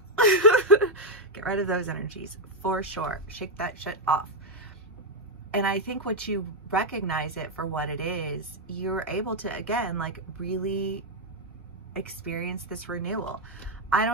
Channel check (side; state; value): both; normal; correlation 0.00